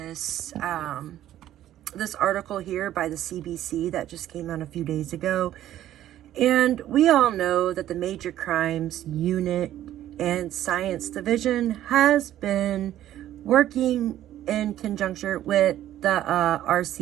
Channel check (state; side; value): quieter; left; 12.5 dB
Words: this article here by the CBC that just came out a few days ago. And we all know that the Major Crimes Unit and Science Division has been working in conjunction with the